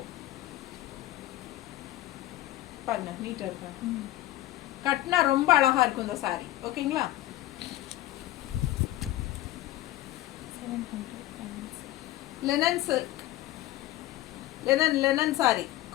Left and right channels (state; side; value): quieter; right; 15.6 dB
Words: பாருங்க, நீட்டாக இருக்கா, கட்டினா ரொம்ப அழகாக இருக்கும் இந்த சாரீ. ஓகேங்களா? Linen silk, linen sorry,